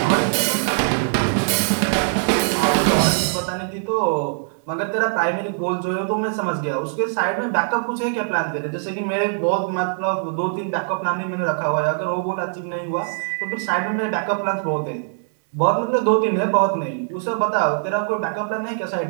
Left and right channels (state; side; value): silent; left; digital silence